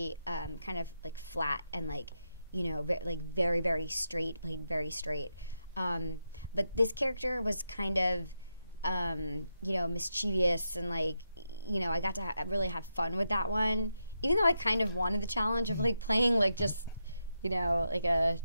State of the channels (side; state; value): both; inverted; correlation -0.85